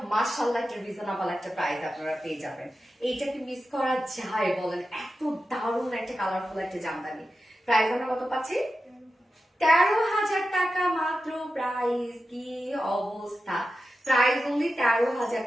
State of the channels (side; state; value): both; normal; correlation 0.92